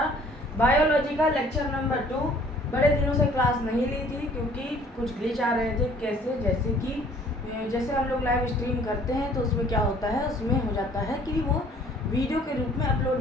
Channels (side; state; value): both; normal; correlation 0.55